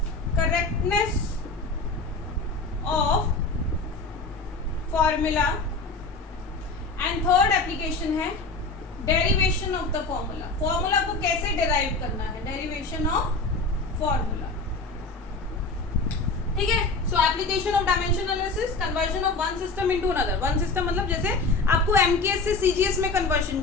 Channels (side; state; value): right; quieter; 3.6 dB